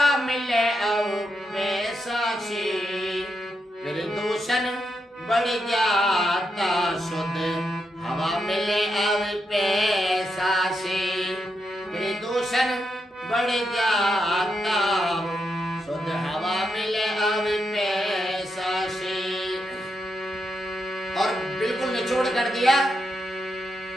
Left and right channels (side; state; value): both; normal; correlation 0.84